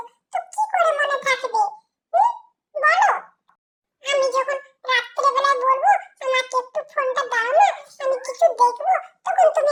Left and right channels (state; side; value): identical; both; correlation 1.00